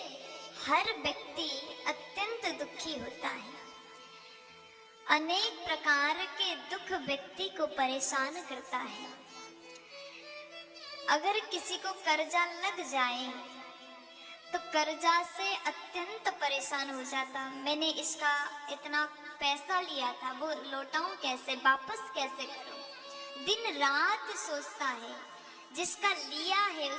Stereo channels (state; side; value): identical; both; correlation 1.00